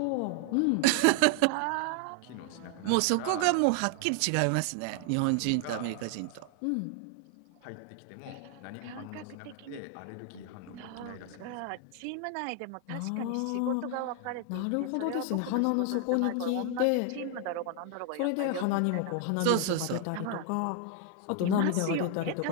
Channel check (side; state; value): both; different; correlation 0.00